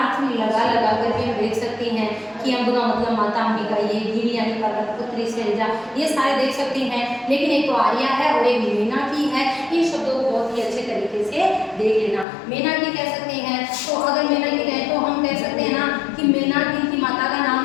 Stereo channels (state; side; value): drops out; right; at 12.2 s